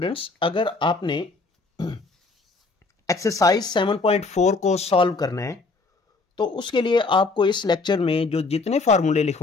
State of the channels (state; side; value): quieter; right; 3.9 dB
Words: अगर आपने एक्सरसाइज 7.4 को सॉल्व करना है तो उसके लिए आपको इस लेक्चर में जो जितने फार्मूले